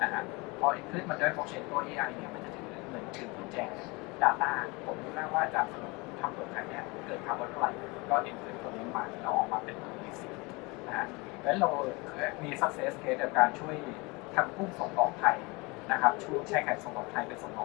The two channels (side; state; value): right; quieter; 26.2 dB